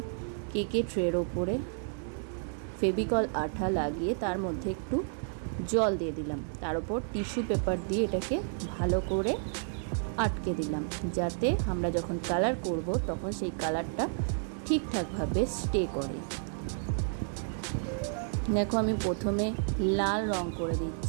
কেকের ট্রের ওপরে ফেভিকল আঠা লাগিয়ে তার মধ্যে একটু জল দিয়ে দিলাম, তার উপর টিস্যু পেপার দিয়ে এটাকে ভালো করে আটকে দিলাম, যাতে আমরা যখন কালার করব তখন সেই কালারটা ঠিকঠাকভাবে স্টে করে। দেখো, আমি প্রথমে লাল রং করে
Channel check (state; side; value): silent; left; digital silence